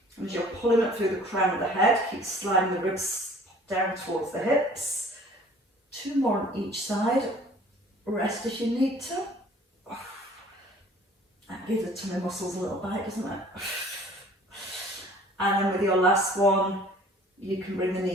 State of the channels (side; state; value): both; normal; correlation 0.51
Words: And as you're pulling up through the crown of the head, keep sliding the ribs down towards the hips. 2 more on each side. Rest if you need to. That gives the tummy muscles a little bite, doesn't it? And then with your last one, you can bring the